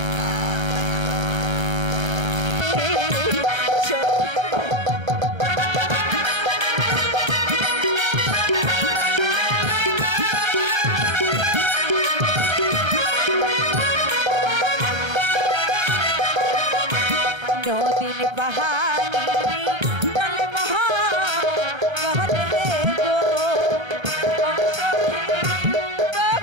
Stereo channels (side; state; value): left; late; 1.2 ms